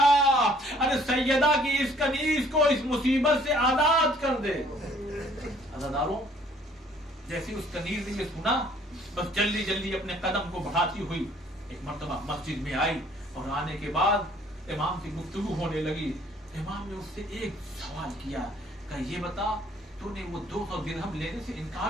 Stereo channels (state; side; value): normal; both; correlation 0.59